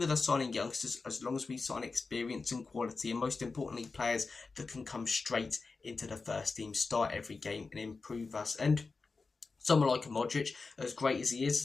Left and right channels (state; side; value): quieter; right; 4.2 dB